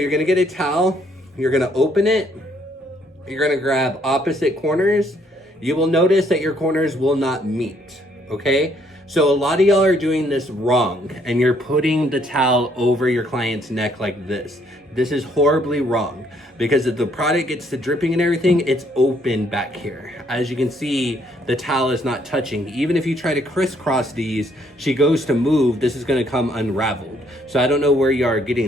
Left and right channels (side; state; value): both; normal; correlation 0.68